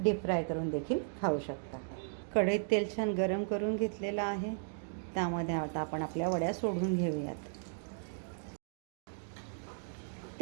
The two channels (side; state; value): left; silent; digital silence